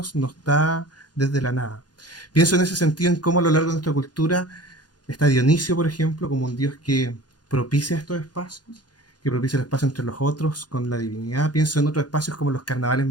no está desde la nada. Pienso en ese sentido en cómo a lo largo de nuestra cultura está Dionisio, por ejemplo, como un dios que propicia estos espacios, que propicia el espacio entre los otros con la divinidad. Pienso en otros espacios como los carnavales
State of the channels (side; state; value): right; late; 0.69 ms